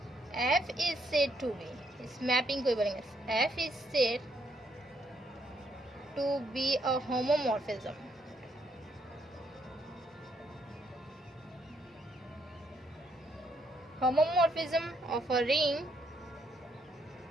f is said to be, इस मैपिंग को बोलेंगे f is said to be a homomorphism, homomorphism of a ring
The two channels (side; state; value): both; normal; correlation 0.73